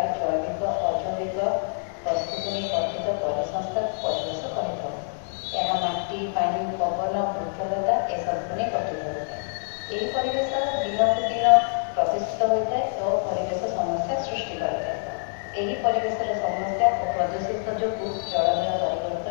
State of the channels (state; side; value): silent; right; digital silence